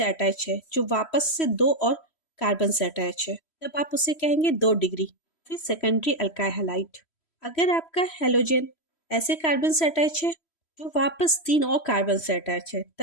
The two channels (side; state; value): right; late; 3.1 ms